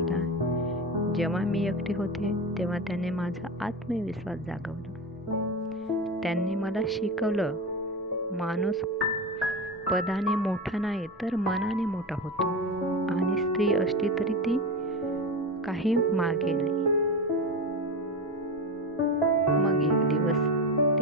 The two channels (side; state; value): both; normal; correlation 0.22